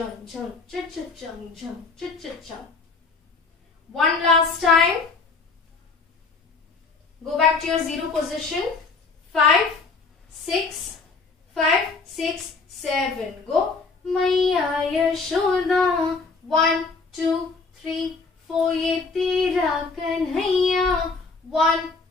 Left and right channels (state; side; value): quieter; right; 4.2 dB